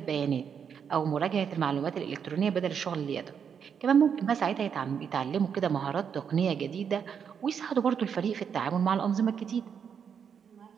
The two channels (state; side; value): quieter; left; 7.3 dB